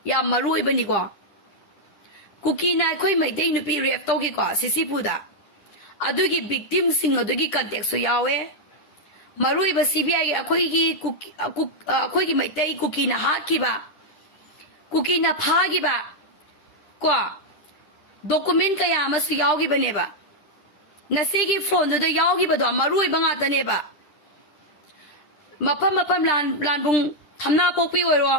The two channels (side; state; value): right; late; 10 ms